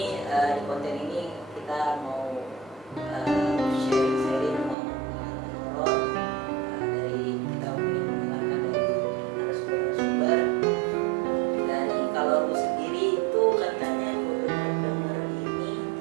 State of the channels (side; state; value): left; drops out; at 4.8 s